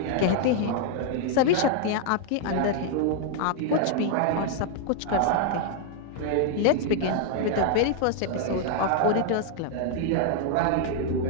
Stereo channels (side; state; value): both; different; correlation 0.00